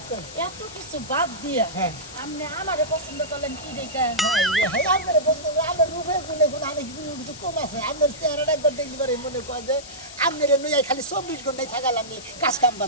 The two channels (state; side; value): noise; left; hiss, 15 dB below the sound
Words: এত কিছু বাদ দিয়া আপনি আমারে পছন্দ করলেন কি দেখা আমার প্রশ্ন আমার রূপে গুণে গুণ অনেক কিছু কম আছে আপনার চেহারাটা একবার দেখলি পরে মনে কয় যে আপনার নইয়া খালি 24 ঘন্টায় থাকালাম নি কাজ কাম